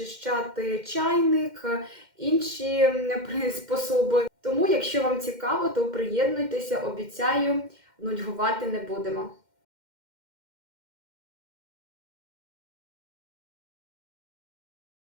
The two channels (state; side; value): late; left; 2.1 ms